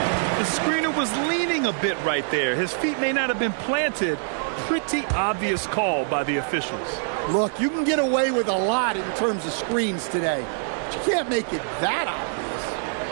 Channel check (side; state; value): left; silent; digital silence